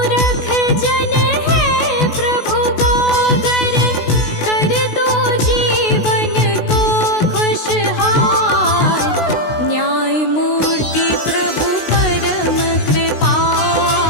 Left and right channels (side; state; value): right; late; 16 ms